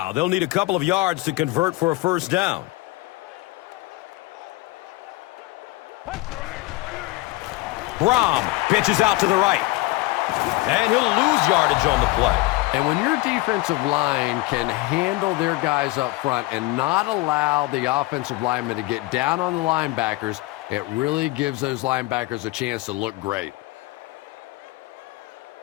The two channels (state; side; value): quieter; right; 20.0 dB